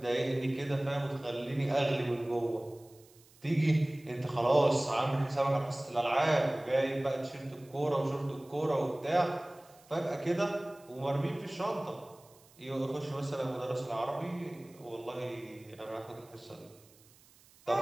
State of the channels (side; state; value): right; noise; hiss, 27 dB below the sound